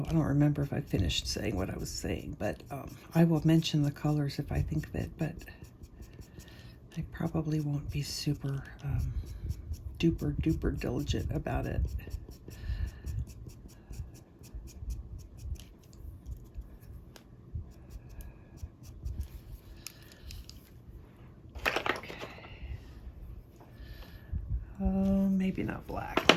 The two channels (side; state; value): both; identical; correlation 1.00